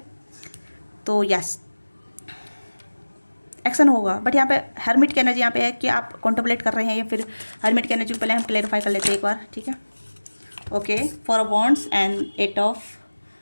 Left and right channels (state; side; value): inverted; both; correlation -1.00